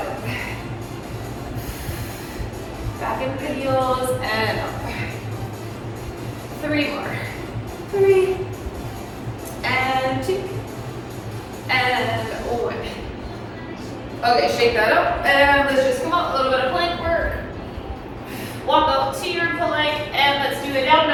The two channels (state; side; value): identical; both; correlation 1.00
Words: Back into the heels and up. 3 more. 3 and 2 and 1. Okay, shake that up and let's just come up. A little bit of plank work. Walk up to your plank and let's do a down